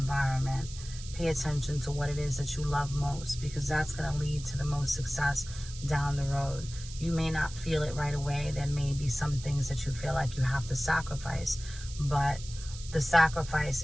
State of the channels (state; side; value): noise; right; hiss, 14 dB below the sound